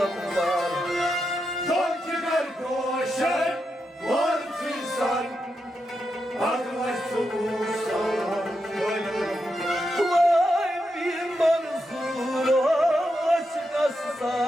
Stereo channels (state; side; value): normal; both; correlation 0.86